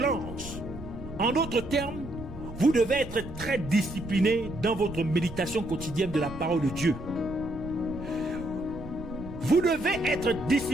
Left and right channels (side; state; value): right; noise; rumble, 13 dB below the sound